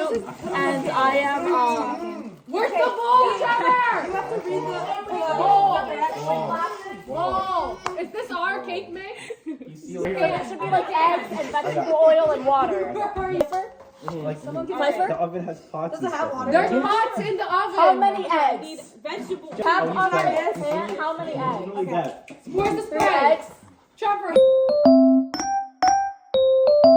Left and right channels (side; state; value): both; identical; correlation 1.00